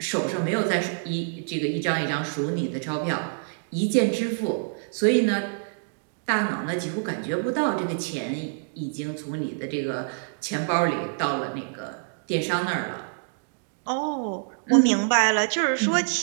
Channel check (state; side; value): silent; left; digital silence